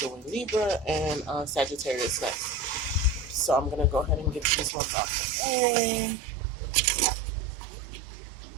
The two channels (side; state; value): left; drops out; at 4.7 s